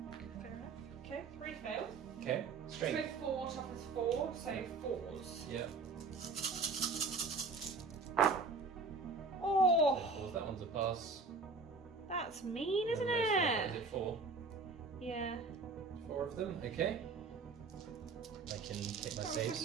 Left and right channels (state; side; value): quieter; left; 4.1 dB